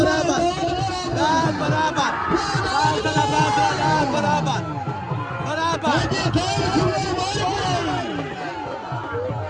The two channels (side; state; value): both; identical; correlation 1.00